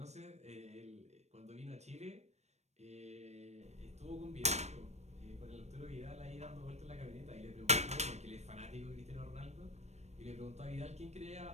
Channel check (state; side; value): late; left; 0.32 ms